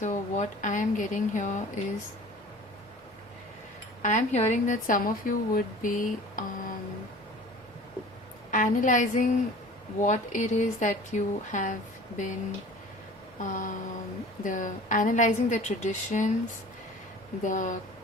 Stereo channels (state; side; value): normal; both; correlation 0.43